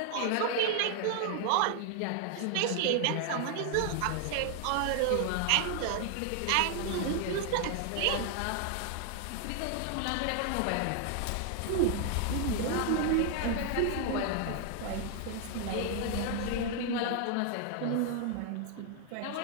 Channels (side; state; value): both; different; correlation 0.00